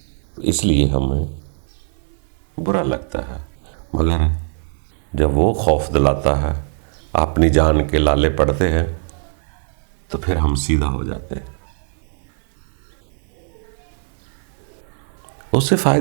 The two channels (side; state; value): left; silent; 58 dB below the other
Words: اس لیے ہمیں برا لگتا ہے. مگر جب وہ خوف دلاتا ہے، اپنی جان کے لالے پڑتے ہیں، تو پھر ہم سیدھا ہو جاتے ہیں. اس سے